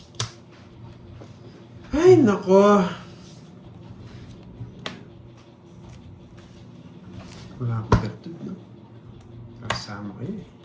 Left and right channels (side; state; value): both; identical; correlation 1.00